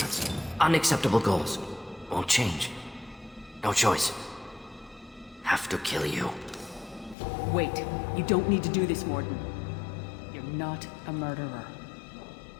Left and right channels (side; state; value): right; drops out; at 7.2 s